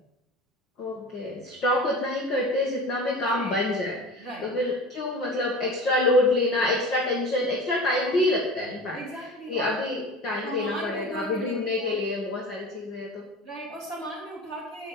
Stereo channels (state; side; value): normal; both; correlation 0.35